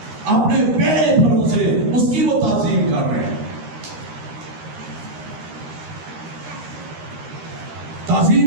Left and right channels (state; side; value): late; left; 13 ms